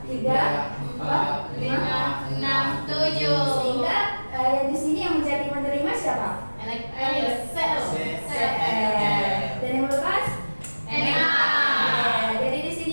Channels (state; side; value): inverted; both; correlation -1.00